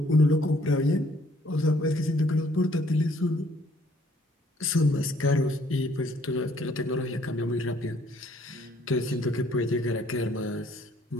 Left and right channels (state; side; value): normal; both; correlation 0.63